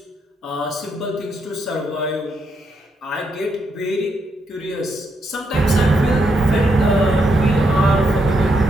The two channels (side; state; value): both; normal; correlation 0.79